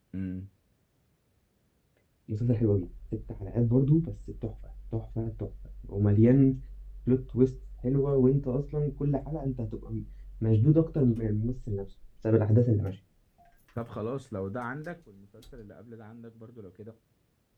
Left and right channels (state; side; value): identical; both; correlation 1.00